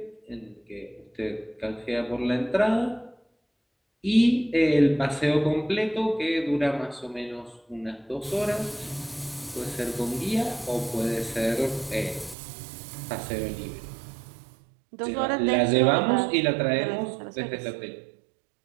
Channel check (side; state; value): left; drops out; at 12.4 s